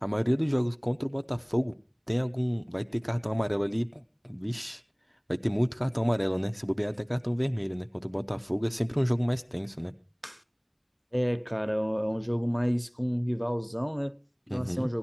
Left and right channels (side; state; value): both; identical; correlation 1.00